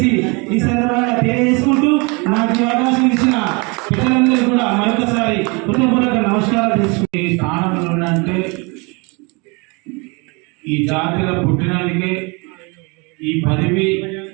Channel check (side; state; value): left; quieter; 29.5 dB